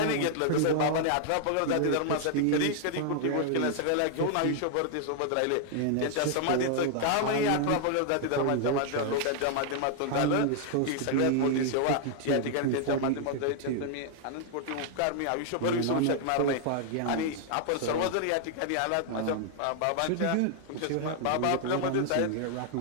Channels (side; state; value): both; different; correlation 0.00